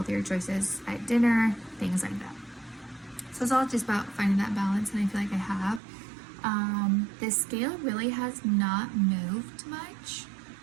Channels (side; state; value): left; drops out; at 5.8 s